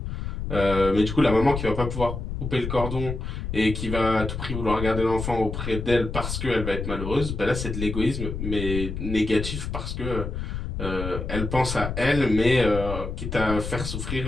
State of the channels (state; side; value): noise; left; rumble, 5 dB below the sound